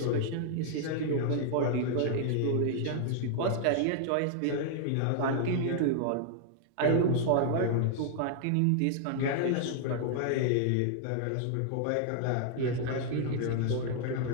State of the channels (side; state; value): both; different; correlation 0.00